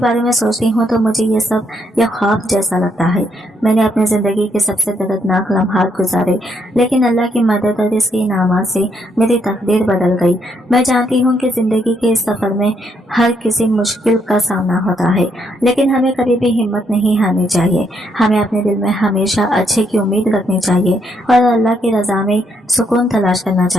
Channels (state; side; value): normal; both; correlation 0.74